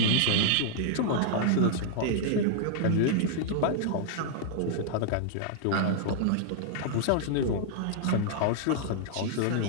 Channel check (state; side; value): different; both; correlation -0.01